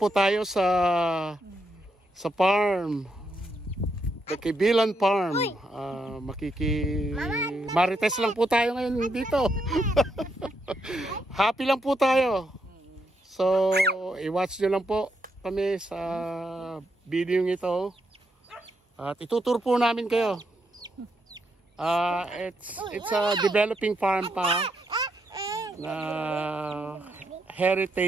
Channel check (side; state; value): both; normal; correlation 0.79